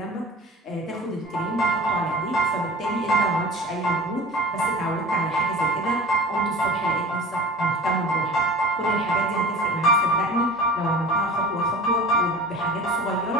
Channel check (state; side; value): normal; both; correlation 0.38